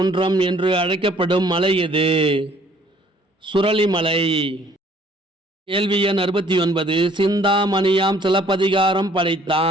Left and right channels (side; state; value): both; normal; correlation 0.59